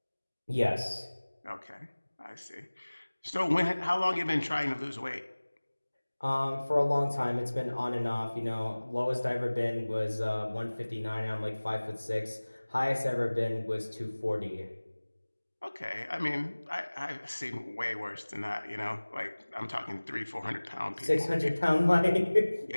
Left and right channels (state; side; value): inverted; both; correlation -1.00